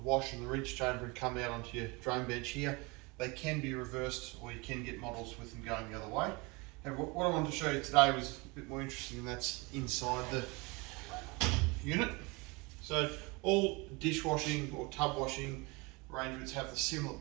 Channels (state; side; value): quieter; left; 26.7 dB